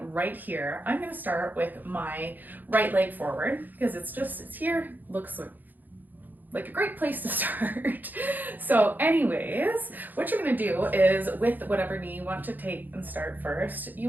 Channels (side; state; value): left; late; 0.086 ms